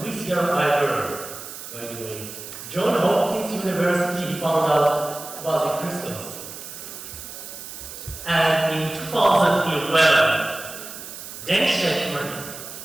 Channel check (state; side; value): noise; right; hiss, 12 dB below the sound